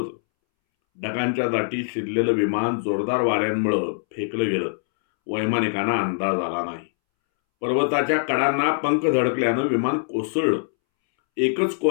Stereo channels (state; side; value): silent; right; 63 dB below the other